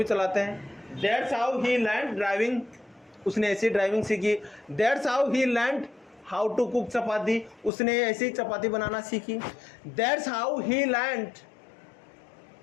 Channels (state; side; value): drops out; right; at 7.7 s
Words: चलाते हैं। That's how he learned driving, उसने ऐसी ड्राइविंग सीखी। That's how he learned how to cook chapati, उसने ऐसे ही चपाती बनाना सीखी। That's how he learned